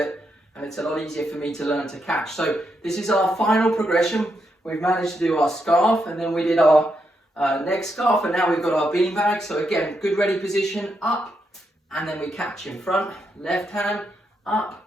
and it's a lot easier for me to learn to catch. So this is our final progression. We've managed to do our scarf and then we did our next scarf and now we've got our beanbag. So again, good ready position, up, and then we catch in front, left hand, up,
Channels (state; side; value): normal; both; correlation 0.81